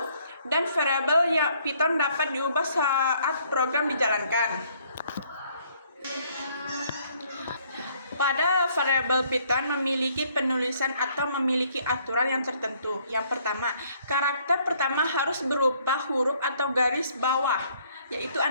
dan variabel Python dapat diubah saat program dijalankan. Pada variabel Python memiliki penulisan atau memiliki aturan yang tertentu. Yang pertama, karakter pertama harus berupa huruf atau garis bawah, yaitu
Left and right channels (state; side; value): inverted; both; correlation -0.65